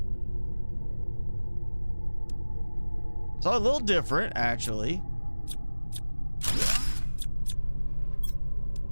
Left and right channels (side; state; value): both; inverted; correlation -1.00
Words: so a little different, actually.